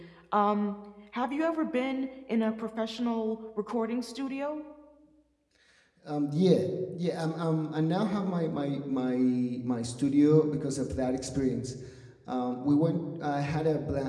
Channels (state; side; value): identical; both; correlation 1.00